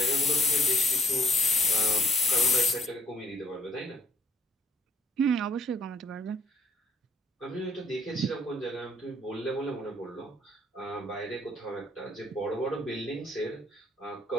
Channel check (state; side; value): normal; both; correlation 0.61